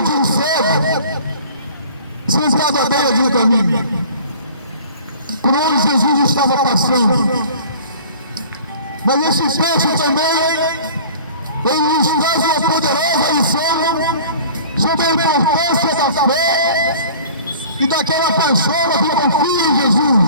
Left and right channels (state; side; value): inverted; both; correlation -0.45